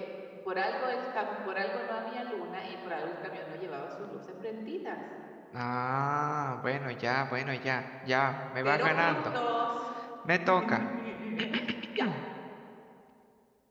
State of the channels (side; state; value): both; identical; correlation 1.00